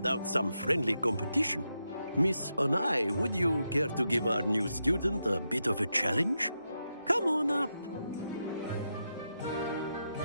some friendly competition. Miss Onai, would you care to give our new student a bit of a challenge? Come on up.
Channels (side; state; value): both; inverted; correlation -0.86